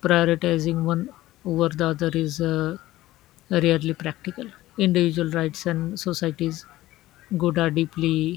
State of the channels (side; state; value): right; quieter; 16.3 dB